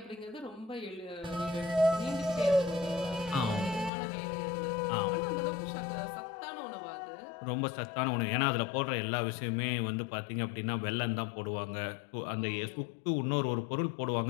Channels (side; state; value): right; drops out; at 3.9 s